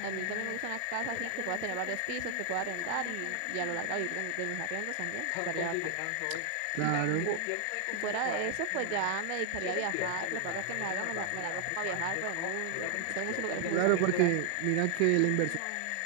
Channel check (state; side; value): different; both; correlation 0.00